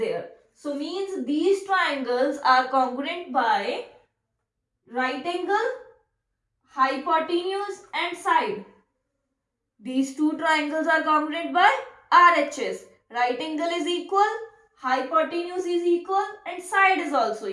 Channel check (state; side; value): identical; both; correlation 1.00